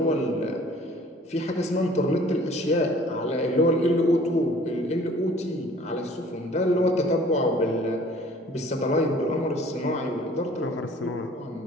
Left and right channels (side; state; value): both; normal; correlation 0.52